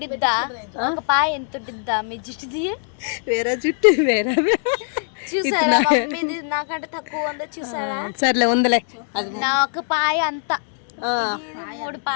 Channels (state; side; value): silent; right; digital silence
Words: ఒక పాయ ఎంత ఉండిద్దా మీ జుట్టుది? వేరే జుట్టు వేరే చూసారా, మీది నాకంటే తక్కువ ఉందో చూసారా? సర్లే ఉందిలే, అది నా ఒక పాయ అంతా 3